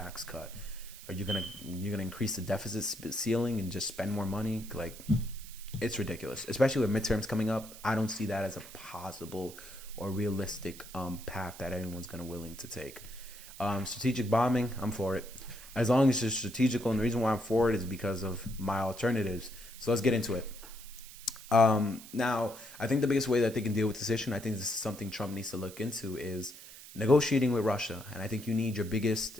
cut? Are you're gonna increase the deficit ceiling and just spend more money? Like, it's ridiculous, especially with midterms coming up. I don't see that as a possible or realistic path that anyone's gonna willing to take. Strategic bombing, I'm for it, as long as it's strategical. And the reason why I'm for it is because of my alternatives. So let's get into it. Now, I think the biggest way that they can deal with this issue, and I think this is something Trump needs to look into, is negotiating with Russia. And I think you need your biggest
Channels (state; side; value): noise; right; hiss, 16 dB below the sound